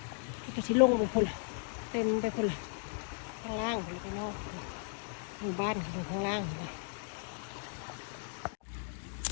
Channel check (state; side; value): silent; right; 54 dB below the other